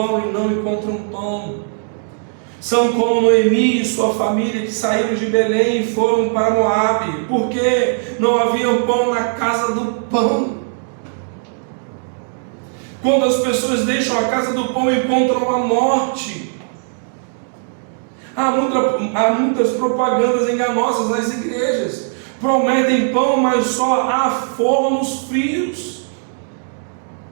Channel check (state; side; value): silent; left; digital silence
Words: e não encontram pão. São como Noemi e sua família que saíram de Belém e foram para Moabe, porque não havia pão na casa do pão. Quando as pessoas deixam a casa do pão, encontram a morte. Há muitas propagandas enganosas nas igrejas. Prometem pão, mas só há fornos frios,